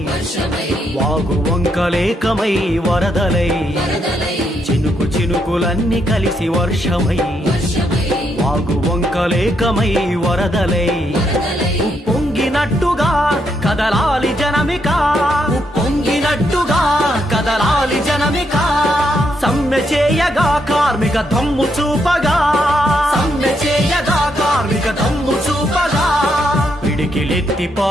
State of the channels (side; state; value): both; normal; correlation 0.77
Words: వాగు వంకలేకమై వరదలై చినుకులన్నీ కలిసి వర్షమై వాగు వంకలేకమై వరదలై ఉప్పొంగినట్టుగా కదలాలి జనమిక ఉప్పొంగినట్టుగా కదలాలి జనమిక సమ్మె చేయగా కార్మిక దమ్ము చూపగా సమ్మె చేయగా కార్మిక దమ్ము చూపగా పిడికిలెత్తి